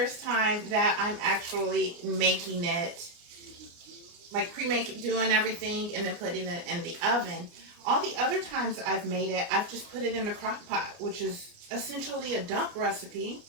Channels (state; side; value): late; left; 29 ms